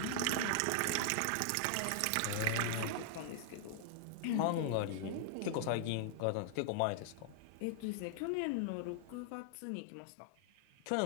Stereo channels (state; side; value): different; both; correlation -0.01